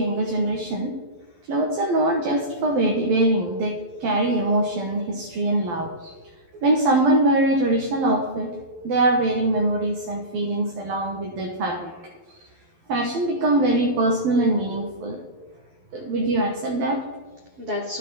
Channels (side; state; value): left; late; 12 ms